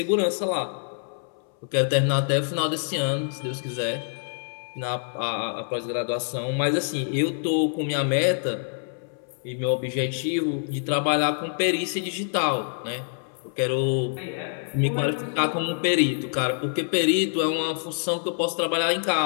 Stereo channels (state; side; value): silent; right; 60 dB below the other